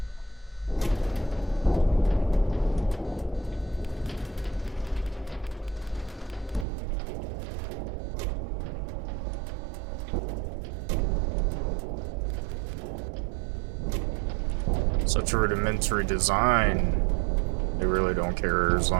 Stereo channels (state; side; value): drops out; left; at 6.7 s